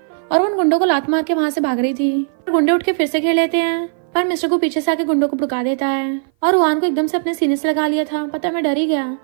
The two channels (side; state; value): left; silent; 57 dB below the other